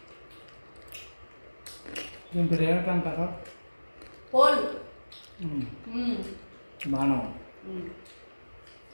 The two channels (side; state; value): both; inverted; correlation -1.00